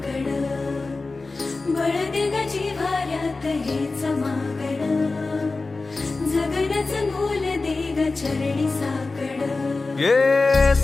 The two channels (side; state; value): right; quieter; 3.6 dB